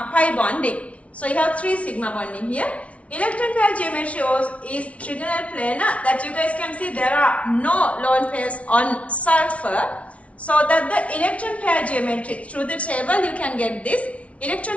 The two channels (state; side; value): late; right; 0.064 ms